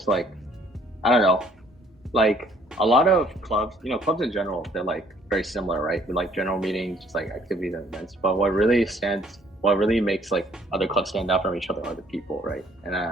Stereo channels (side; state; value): both; normal; correlation 0.62